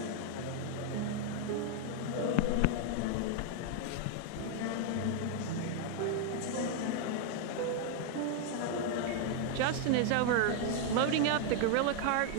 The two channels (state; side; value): different; both; correlation 0.00